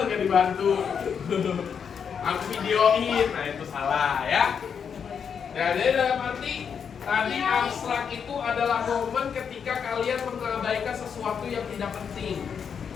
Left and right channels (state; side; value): quieter; right; 7.0 dB